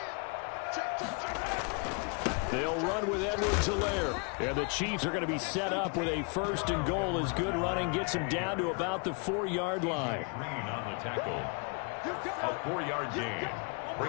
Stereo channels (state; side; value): quieter; right; 35.2 dB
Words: They'll run with Edwards-Helaire. And the Chiefs are going to be set up with a 1st and goal as good running gets him down to about the 4-yard line. Green on the tackle. A 4-yard gain